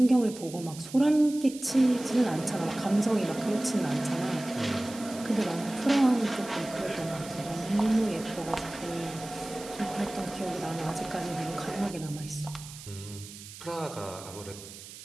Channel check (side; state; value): right; noise; hiss, 15 dB below the sound